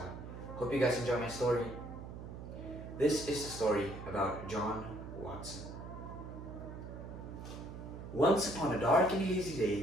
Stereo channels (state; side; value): noise; right; hum, 10 dB below the sound